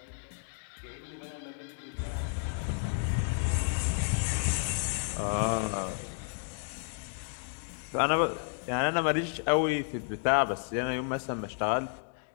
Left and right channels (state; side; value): silent; right; 57 dB below the other